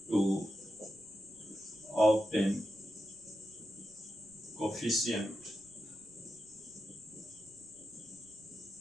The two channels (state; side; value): noise; right; rumble, 29 dB below the sound